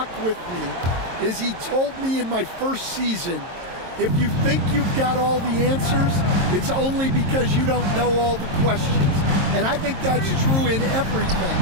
with me is he told me in my first season, if you think you've got all the answers, it's only because you don't know all the questions. And I think that's true in everything,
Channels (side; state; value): left; late; 22 ms